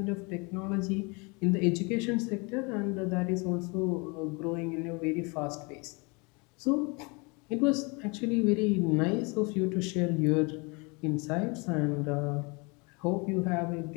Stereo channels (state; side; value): quieter; right; 29.7 dB